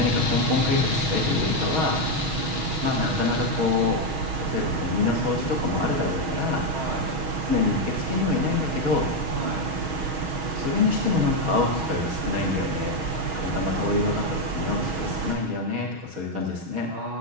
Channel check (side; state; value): left; late; 6.3 ms